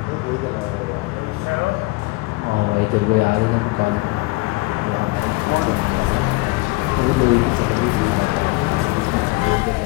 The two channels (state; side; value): quieter; right; 23.7 dB